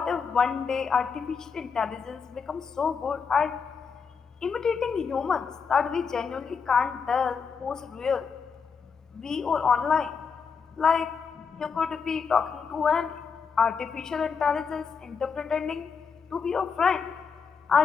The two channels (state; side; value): quieter; right; 5.8 dB